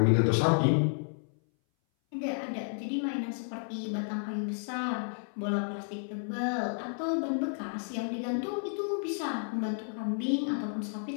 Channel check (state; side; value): silent; right; 57 dB below the other